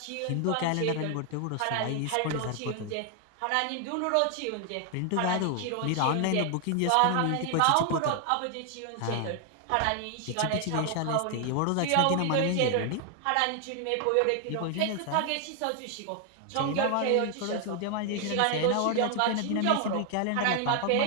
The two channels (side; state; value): both; different; correlation 0.00